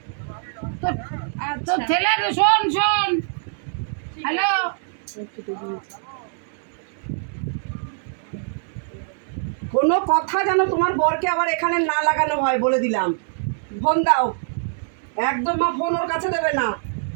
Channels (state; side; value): silent; left; digital silence